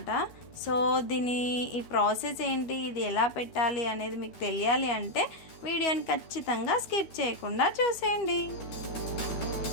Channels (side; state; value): right; late; 12 ms